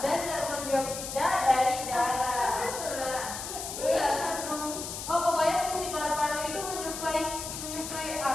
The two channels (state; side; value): noise; left; hiss, 7 dB below the sound